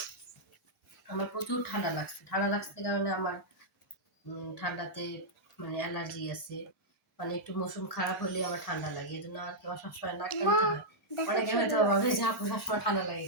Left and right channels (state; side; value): normal; both; correlation -0.07